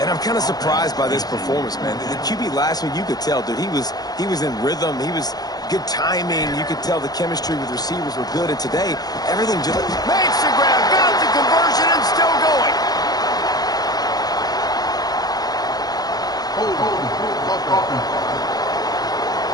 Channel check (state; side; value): late; right; 0.19 ms